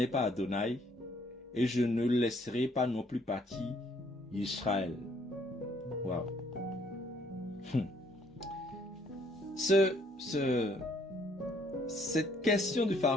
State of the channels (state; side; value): normal; both; correlation 0.65